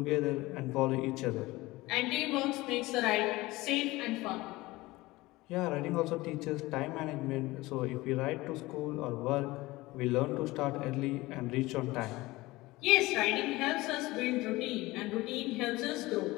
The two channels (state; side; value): quieter; right; 20.0 dB